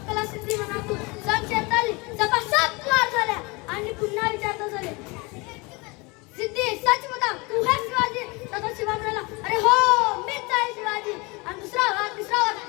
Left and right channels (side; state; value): right; quieter; 26.7 dB